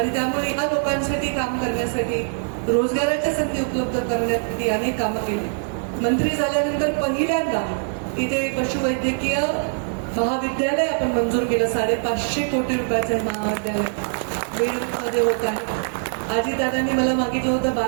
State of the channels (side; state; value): left; silent; digital silence